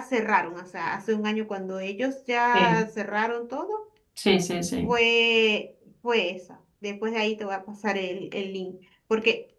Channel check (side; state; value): both; identical; correlation 1.00